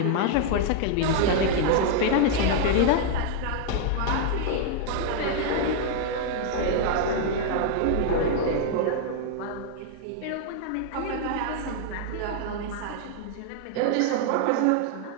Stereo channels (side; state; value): both; different; correlation 0.00